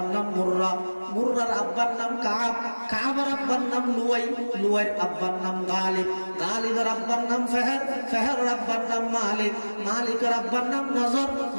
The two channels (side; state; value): both; inverted; correlation -1.00